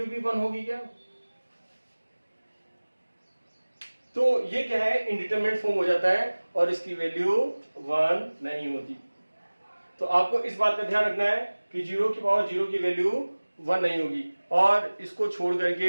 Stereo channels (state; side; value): inverted; both; correlation -1.00